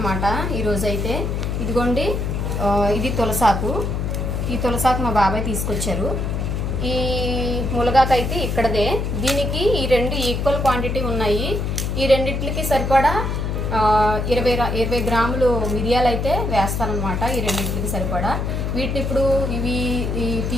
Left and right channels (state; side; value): noise; left; hum, 1 dB below the sound